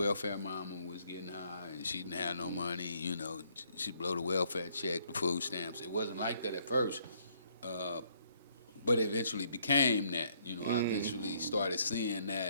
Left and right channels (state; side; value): inverted; both; correlation -0.68